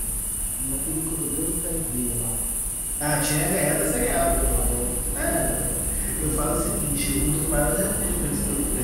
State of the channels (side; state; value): both; identical; correlation 1.00